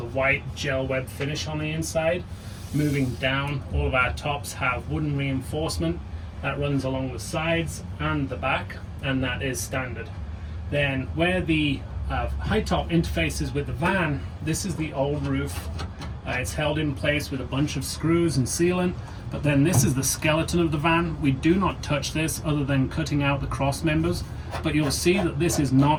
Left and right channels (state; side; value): identical; both; correlation 1.00